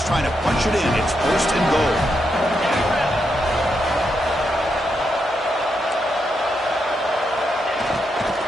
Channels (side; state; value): both; normal; correlation 0.82